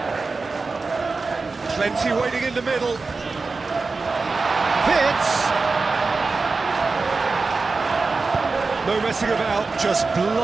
Plenty waiting in the middle. Fitz. No messing about, just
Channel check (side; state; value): left; quieter; 4.0 dB